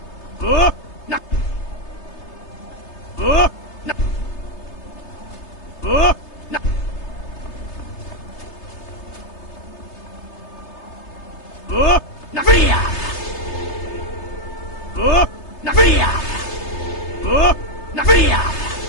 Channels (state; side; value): late; right; 3.3 ms